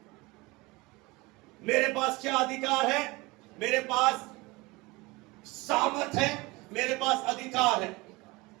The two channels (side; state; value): left; quieter; 23.3 dB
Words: मेरे पास क्या अधिकार है? मेरे पास सामर्थ है, मेरे पास अधिकार है।